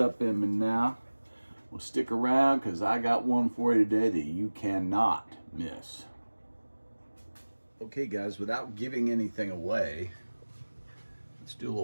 in me now. Well, stick around because I got one for you today that you cannot miss. Okay guys, without giving anything away, let's do a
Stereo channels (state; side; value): inverted; both; correlation -1.00